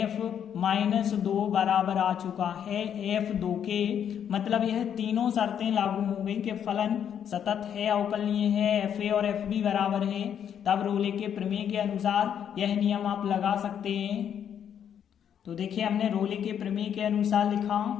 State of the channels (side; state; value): right; quieter; 8.8 dB